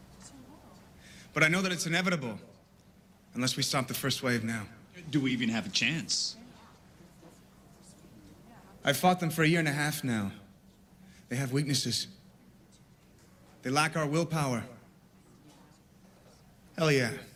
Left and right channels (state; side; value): identical; both; correlation 1.00